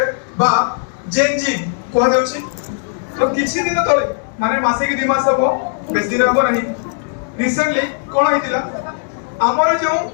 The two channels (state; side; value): silent; right; 66 dB below the other